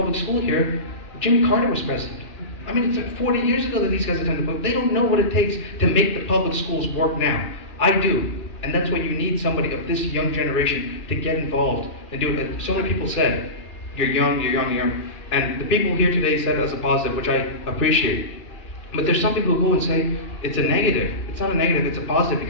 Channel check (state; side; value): late; right; 2.3 ms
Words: school here, Jimmy Carter was president. I mean, it's like 40 years ago that these guys attended public. They don't know what it takes to make the public schools work now. I do. And that's why you need somebody of this young generation to get involved and do it. Like so many people said, you're young, you're young, you're young. And the people here today said it as a positive, which I appreciate. But there's some people who go and say, it's a negative. It's not a negative, it's a positive,